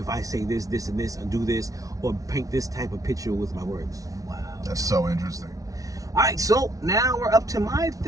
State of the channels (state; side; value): late; left; 0.17 ms